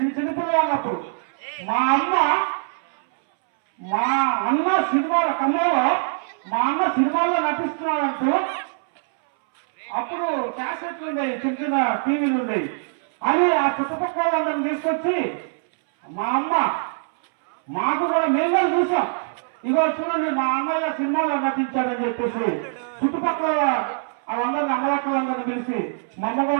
చిన్నపిల్లగా ఉన్నప్పుడు మా అన్న సినిమాల కమ్మలో మా అన్న సినిమాల్లో నటిస్తున్నాడంటూ అప్పుడు క్యాసెట్లు ఉండేవి, చిన్న చిన్న టీవీలు ఉండేవి. అని ఆ చుట్టుపక్కల వాళ్ళని తీసుకొచ్చి మా అమ్మ మాకు కూడా మేము కూడా చూసాం, ఇగో చూడండి మా అన్నయ్య సినిమాలో నటించాడని చెప్పేసి చుట్టుపక్కల వాళ్ళందరినీ అమ్మలక్కలందరినీ పిలిచి మా అమ్మ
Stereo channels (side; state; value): left; silent; 63 dB below the other